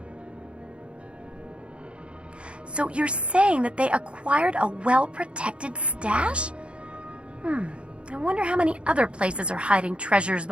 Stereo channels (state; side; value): late; left; 0.058 ms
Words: So you're saying that they acquired a well-protected stash? I wonder how many other places are hiding treasures